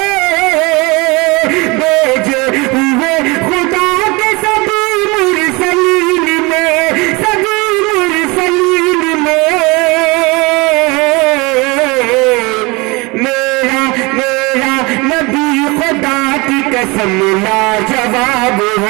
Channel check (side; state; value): left; quieter; 25.7 dB